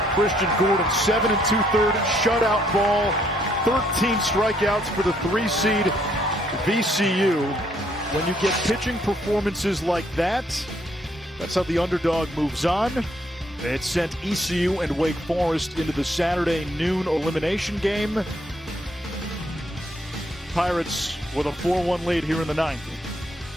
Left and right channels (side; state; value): both; normal; correlation 0.69